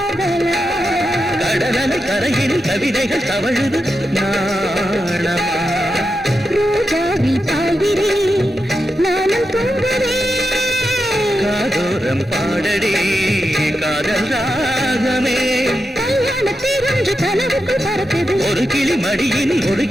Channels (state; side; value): normal; both; correlation 0.88